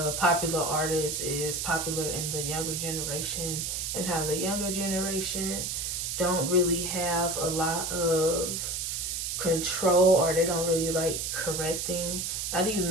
popular artist is popular in the younger generation and how the younger generation don't really have a lot of control, or they don't really like correcting. Not even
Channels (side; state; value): right; noise; hiss, 2 dB below the sound